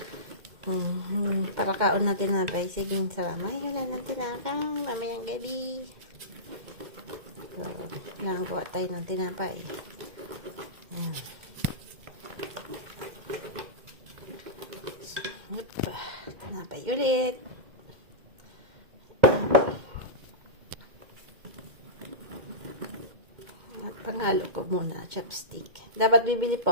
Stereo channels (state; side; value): late; left; 2.1 ms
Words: Para kaon na tinapay. Sige, salamat. Wala na tinapay. Mamayang gabi. So, nakagawa tayo ng tinapay. Ayan. Tinapay ulit. Panghalo ko muna, chopstick. Dapat bibili